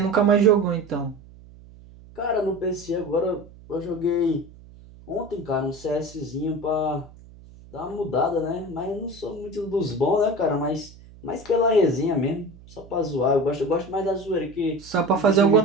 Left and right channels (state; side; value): noise; right; hum, 21 dB below the sound